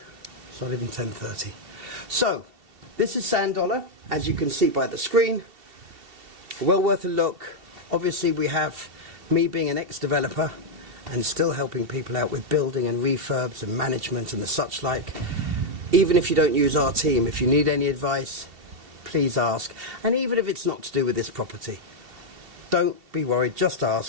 It's not even 10:30. So, This is Sandollar, as you can see by the screen. Well worth a look. Obviously we have me being an ex-developer and still helping people out with building and refurbs and management and the such like. Even if you don't use our team, if you need any advice, please ask. And even if it's not to do with this property, don't be worried, just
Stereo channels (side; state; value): left; late; 2.7 ms